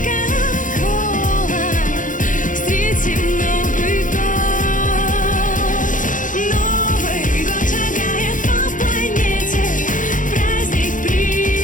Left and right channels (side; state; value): right; late; 0.38 ms